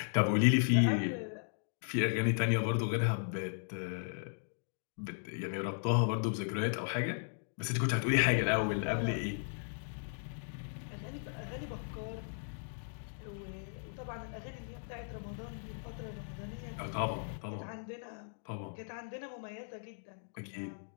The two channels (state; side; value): silent; right; digital silence